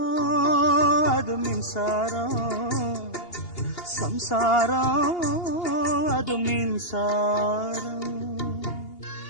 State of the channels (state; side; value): late; right; 2.8 ms